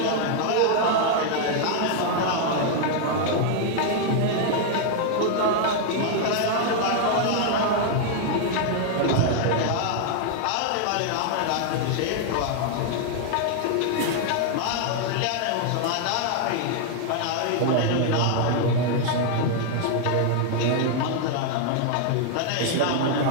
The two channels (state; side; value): different; both; correlation 0.00